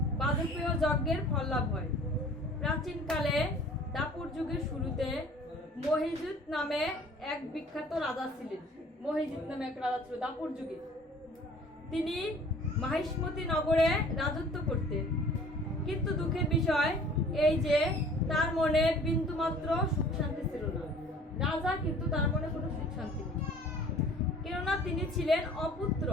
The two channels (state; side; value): normal; both; correlation 0.50